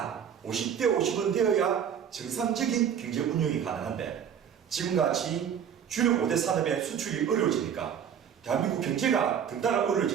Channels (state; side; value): quieter; left; 8.3 dB